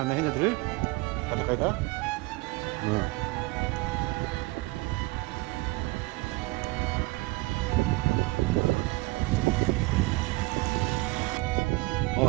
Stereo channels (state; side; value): quieter; left; 23.2 dB